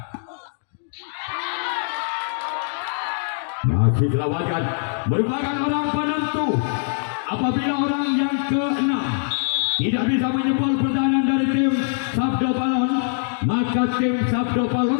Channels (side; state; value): right; silent; digital silence